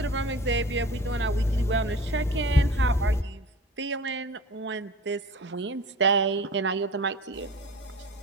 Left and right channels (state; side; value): normal; both; correlation 0.40